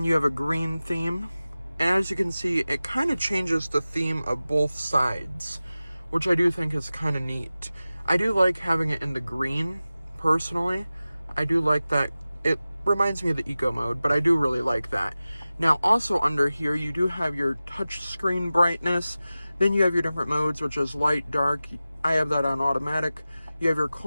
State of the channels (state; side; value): inverted; both; correlation -0.96